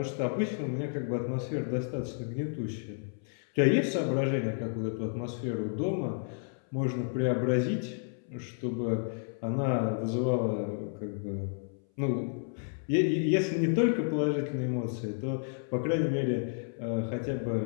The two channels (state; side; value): silent; right; 57 dB below the other